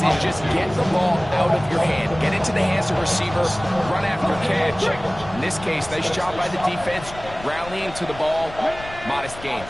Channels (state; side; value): noise; left; rumble, 15 dB below the sound